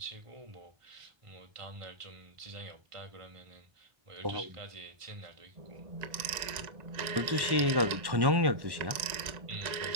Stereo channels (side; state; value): left; late; 1.9 ms